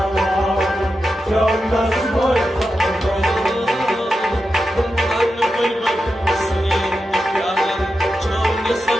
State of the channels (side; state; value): both; normal; correlation 0.90